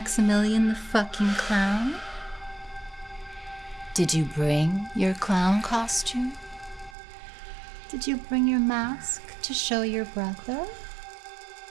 the fucking clown? Did you bring your clown costume? Did you bring your mask to show your brother?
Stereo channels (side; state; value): left; drops out; at 7.0 s